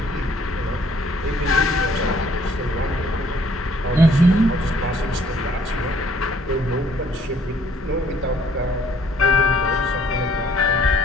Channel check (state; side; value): normal; both; correlation 0.61